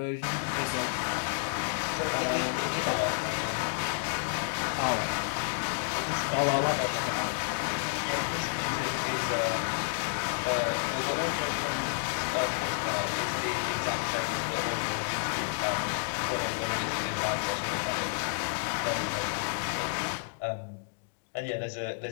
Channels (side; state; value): right; silent; digital silence